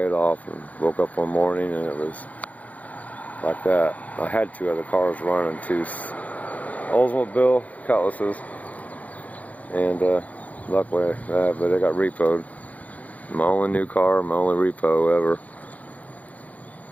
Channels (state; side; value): late; right; 0.073 ms